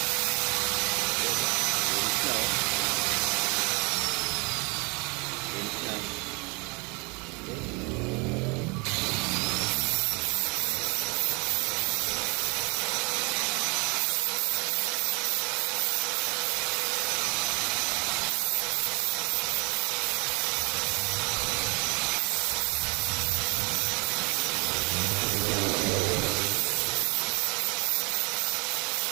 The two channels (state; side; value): quieter; left; 29.7 dB